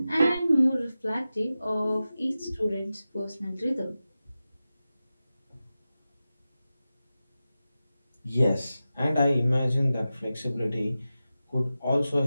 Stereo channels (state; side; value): inverted; both; correlation -0.94